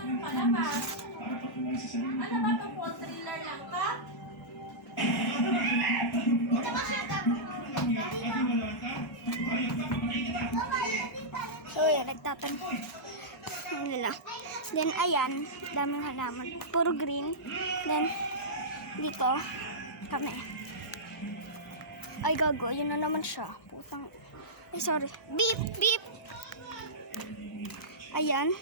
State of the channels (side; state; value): both; normal; correlation -0.12